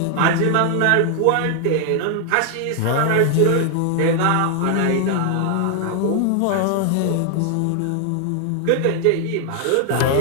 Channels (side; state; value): both; different; correlation 0.00